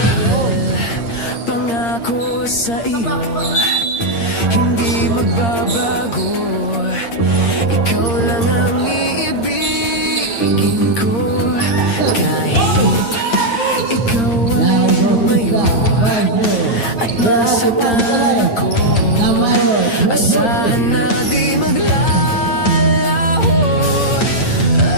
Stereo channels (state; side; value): late; right; 8.7 ms